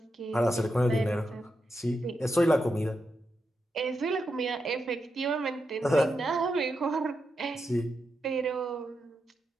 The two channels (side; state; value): both; normal; correlation 0.85